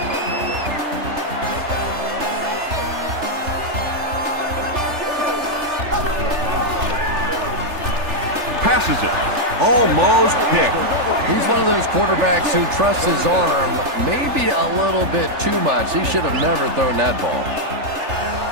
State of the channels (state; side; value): late; left; 3.3 ms